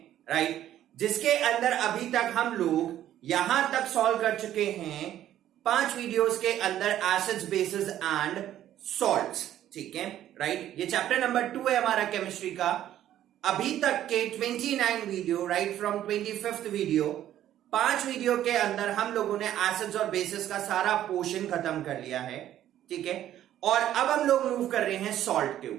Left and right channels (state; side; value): quieter; left; 12.0 dB